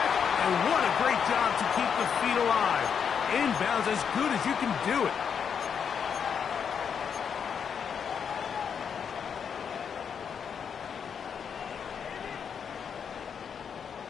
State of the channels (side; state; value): right; quieter; 7.1 dB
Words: and what a great job to keep the feet alive. Inbounds as good as you can do it.